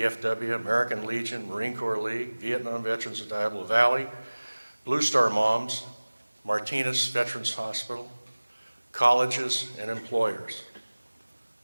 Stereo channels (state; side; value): inverted; both; correlation -1.00